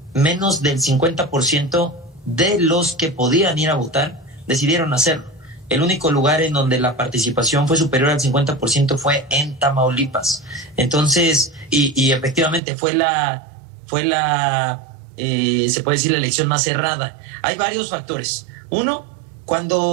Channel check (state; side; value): drops out; left; at 12.6 s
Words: menos del 50% de los que podían ir a votar decidieron hacerlo. El único lugar en donde la participación fue superior al 50% fue en Tamaulipas. Entonces, y efectivamente se puede decir, la elección más cerrada. Hay varios factores. Uno,